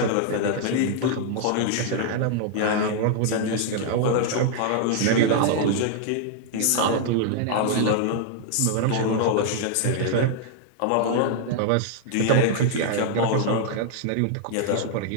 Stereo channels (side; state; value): both; different; correlation 0.00